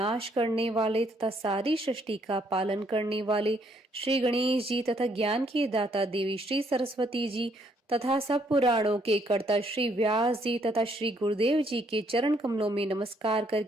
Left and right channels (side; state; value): both; normal; correlation 0.69